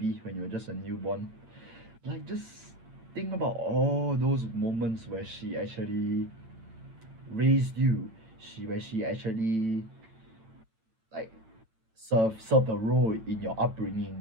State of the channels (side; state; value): left; late; 9.1 ms